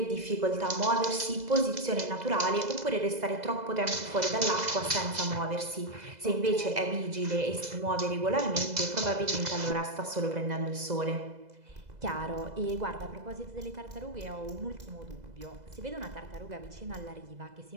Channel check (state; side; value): late; left; 2.0 ms